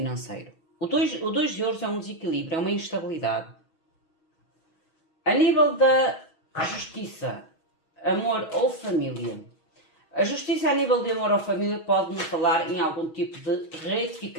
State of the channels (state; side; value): late; right; 6.3 ms